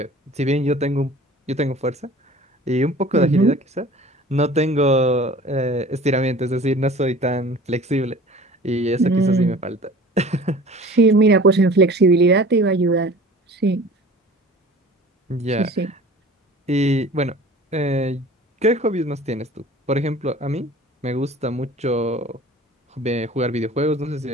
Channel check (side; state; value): both; normal; correlation 0.44